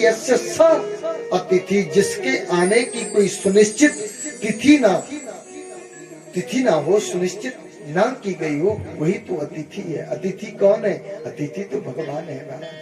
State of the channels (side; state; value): both; identical; correlation 1.00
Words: स अतिथि, जिसके आने की कोई सुनिश्चित तिथि ना हो, सुनिश्चित ना की गई हो, वही तो अतिथि है। अतिथि कौन है? अतिथि तो भगवान है